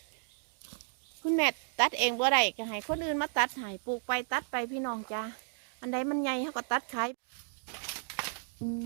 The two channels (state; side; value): silent; left; digital silence